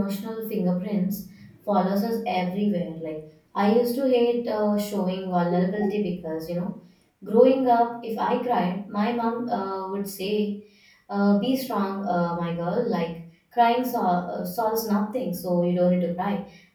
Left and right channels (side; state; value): both; identical; correlation 1.00